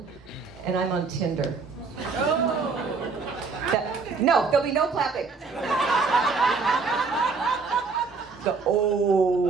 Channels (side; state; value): left; quieter; 4.7 dB